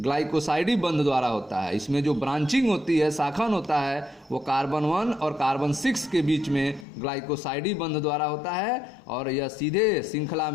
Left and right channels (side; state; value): right; drops out; at 6.9 s